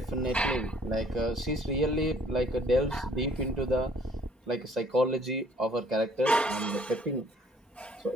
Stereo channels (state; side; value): normal; both; correlation 0.59